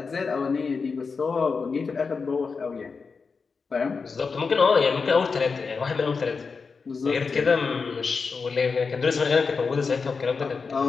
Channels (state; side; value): quieter; right; 5.0 dB